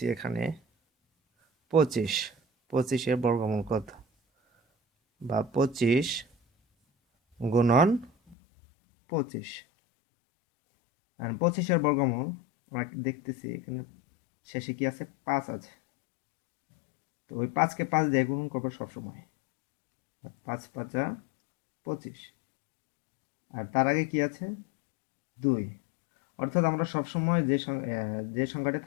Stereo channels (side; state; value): right; drops out; at 8.3 s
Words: এখানে 25, 25-এর বর্গমূল কত, বা 25 গুণন 25। 25-এর বর্গমূল আমরা দেখতেছি এখানে শেষে কি আছে, 5 আছে। তো ওই 5কে 5 দিয়ে গুণন করবো সবসময়। 5 5 25, আর তার আগে কি আছে, 2। অর্থাৎ আমরা সবসময় যে সংখ্যাটা